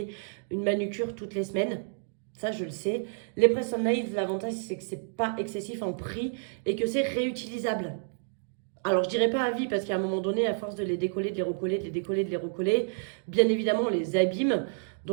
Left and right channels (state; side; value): silent; left; digital silence